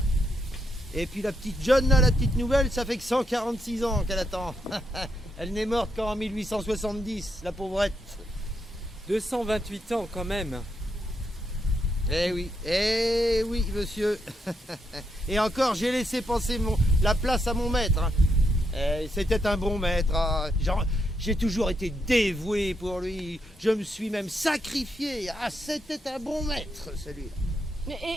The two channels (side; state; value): both; normal; correlation 0.80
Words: Et puis la petite John, là, la petite nouvelle, ça fait que 146 ans qu'elle attend. Elle n'est morte qu'en 1870, la pauvrette. 228 ans quand même. Eh oui, monsieur. Et encore, j'ai laissé passer la place à mon maître. Hein. C'était un bon maître. Ah, j'ai toujours été dévoué pour lui. Je me suis même sacrifié. Ah, c'était un bon maître, celui-là.